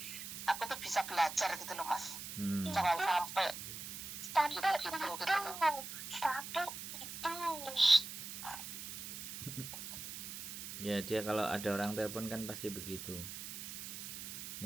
aku tuh bisa belajar gitu loh, Mas. Jangan sampai gitu loh. Ya dia kalau ada orang telepon kan pasti begitu,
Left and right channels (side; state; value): right; noise; hiss, 8 dB below the sound